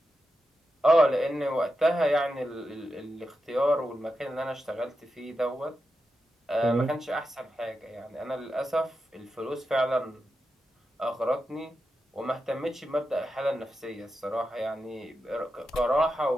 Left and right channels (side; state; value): both; normal; correlation 0.89